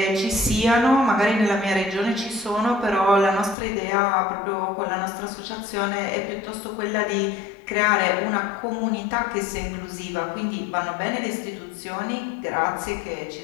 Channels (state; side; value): drops out; right; at 3.6 s